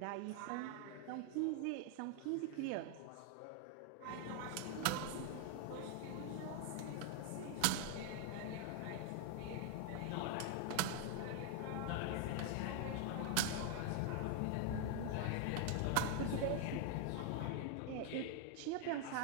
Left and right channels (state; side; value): different; both; correlation 0.00